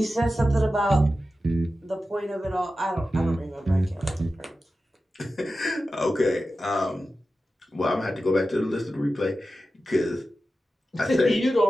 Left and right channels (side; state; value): both; normal; correlation 0.93